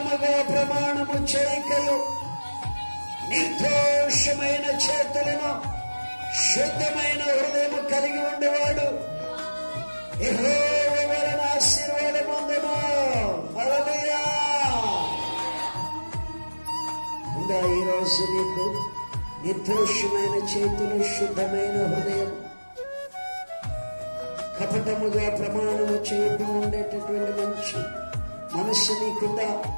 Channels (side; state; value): both; inverted; correlation -1.00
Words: ప్రమాణము చేయకయు, నిర్దోషమైన చేతులను శుద్ధమైన హృదయము కలిగి ఉండేవాడు యెహోవా వలన ఆశీర్వాదం పొందును. హల్లెలూయా. ఉందా ఈరోజు నీకు నిర్దోషమైన చేతులు, శుద్ధమైన హృదయం, కపటముగా ప్రమాణము చేయడం ఉండేటటువంటి మంచి మనస్సు నీకుందా?